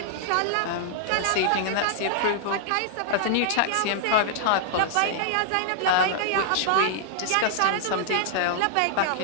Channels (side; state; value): both; different; correlation -0.01